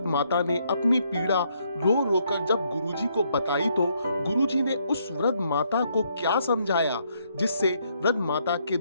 माता ने अपनी पीड़ा रो रो कर जब गुरुजी को बताई तो गुरुजी ने उस वृद्ध माता को क्या समझाया जिससे वृद्ध माता के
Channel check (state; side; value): inverted; both; correlation -0.72